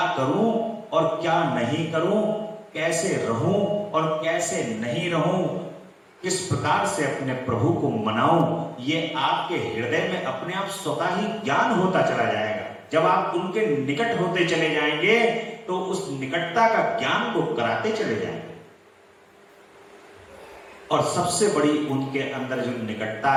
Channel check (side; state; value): both; identical; correlation 1.00